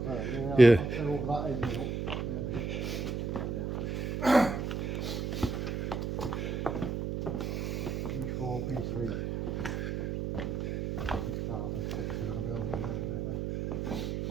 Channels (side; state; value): right; noise; hum, 2 dB below the sound